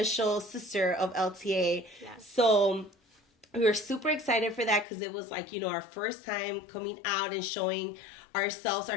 sister of LTA. So we were super excited for that because it was like, you know, our first time coming out and showing ourselves,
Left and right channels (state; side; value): drops out; right; at 4.9 s